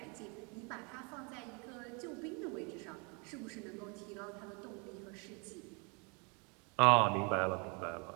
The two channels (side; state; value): left; quieter; 32.7 dB